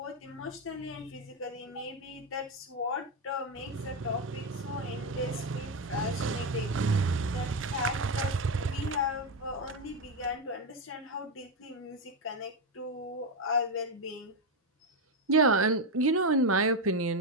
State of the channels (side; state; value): both; normal; correlation 0.08